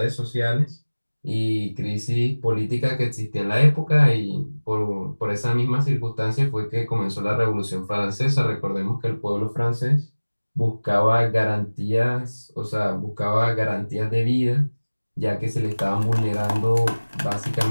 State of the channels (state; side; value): inverted; both; correlation -1.00